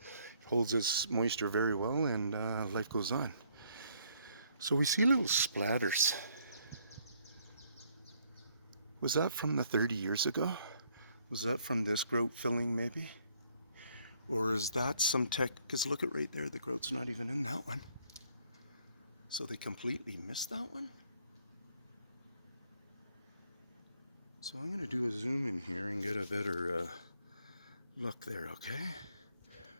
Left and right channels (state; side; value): inverted; both; correlation -0.67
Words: holds its moisture very well and life goes on. So we see little splatters. Was that from the 30 years ago? Was that from this grout filling maybe? Or is that some tech? Because look at right there, the grout's not even in that one. So they completely missed that one? So I'm going to do a zoom in here and get a better look there, okay?